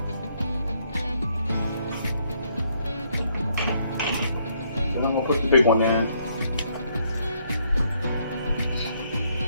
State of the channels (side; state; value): both; inverted; correlation -0.71